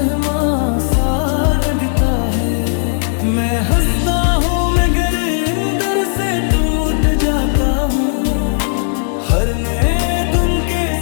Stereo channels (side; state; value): right; silent; 69 dB below the other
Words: सा लगता है। मैं हंसता हूँ मगर अंदर से टूट जाता हूँ, हर नए दिन के